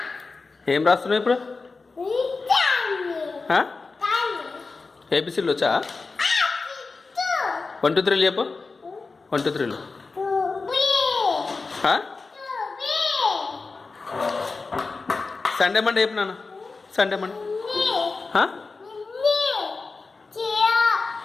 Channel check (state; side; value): quieter; right; 4.1 dB